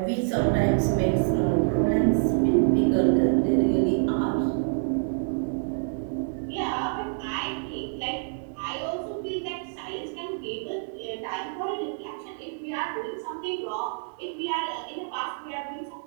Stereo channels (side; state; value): left; silent; digital silence